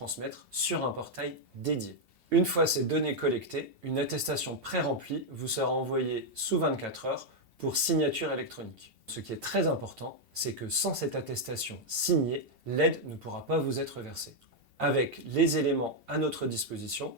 sur un portail dédié. Une fois ces données collectées, une attestation pré-remplie vous sera envoyée sous 24 heures pour signature électronique. Ce qui est très important, c'est que sans cette attestation signée, l'aide ne pourra pas vous être versée. Avec les éléments à notre disposition,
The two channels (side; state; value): left; late; 2.7 ms